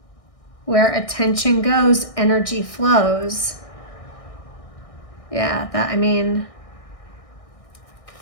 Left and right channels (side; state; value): right; late; 1.6 ms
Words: Where attention goes, energy flows. Yeah,